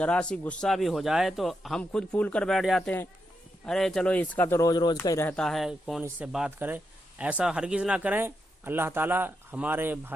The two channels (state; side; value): normal; both; correlation 0.84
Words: سی غصہ بھی ہو جائے تو ہم خود پھول کر بیٹھ جاتے ہیں، ارے چلو اس کا تو روز روز کا ہی رہتا ہے، کون اس سے بات کرے۔ ایسا ہرگز نہ کریں۔ اللہ تعالیٰ ہمارے